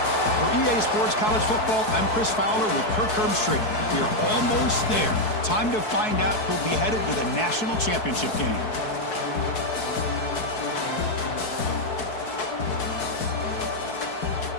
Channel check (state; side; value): late; right; 4.6 ms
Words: For EA Sports College Football, I'm Chris Fowler with Kirk Herbstreit. We are almost there. Time to find out who'll be headed to the national championship game.